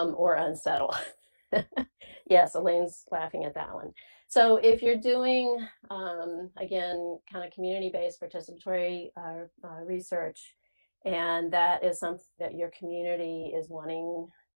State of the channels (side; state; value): both; inverted; correlation -1.00